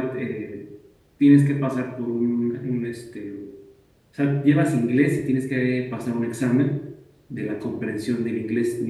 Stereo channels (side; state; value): both; identical; correlation 1.00